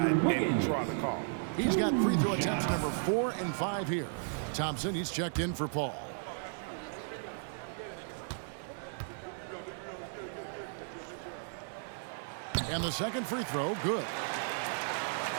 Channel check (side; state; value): left; silent; digital silence